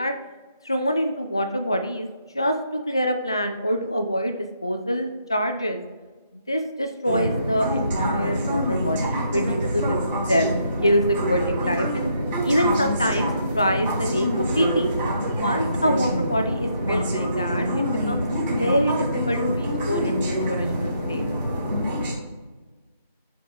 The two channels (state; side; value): inverted; both; correlation -0.74